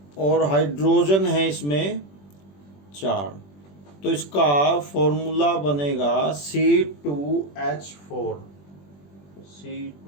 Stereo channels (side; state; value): right; late; 21 ms